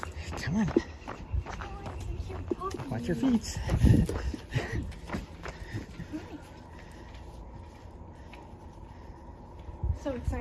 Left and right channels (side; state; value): both; identical; correlation 1.00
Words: Come on. Watch your feet. So